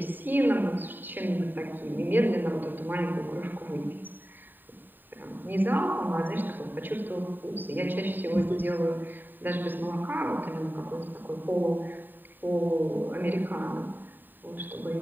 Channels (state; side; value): late; left; 0.091 ms